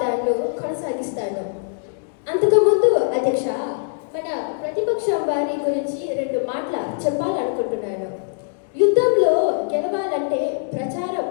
కొనసాగిస్తాను. అంతకుముందు అధ్యక్ష, మన ప్రతిపక్షం వారి గురించి 2 మాటలు చెప్పాలనుకుంటున్నాను. యుద్ధంలో గెలవాలంటే ప్రచారం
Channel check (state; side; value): silent; right; digital silence